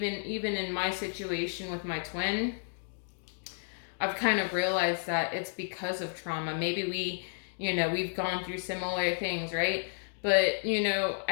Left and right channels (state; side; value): silent; right; digital silence